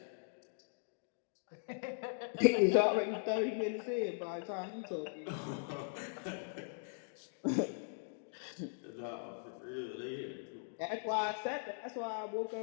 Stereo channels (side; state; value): right; silent; digital silence